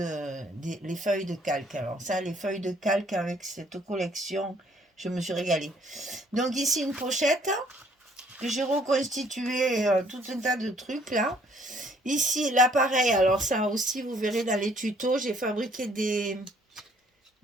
les feuilles de calque. Alors ça, les feuilles de calque avec cette collection, je me suis régalée. Donc ici, une pochette que j'ai reconstitué tout un tas de trucs là. Ici, l'appareil, alors ça aussi, vous verrez dans les tutos, j'ai fabriqué des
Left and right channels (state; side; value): normal; both; correlation 0.62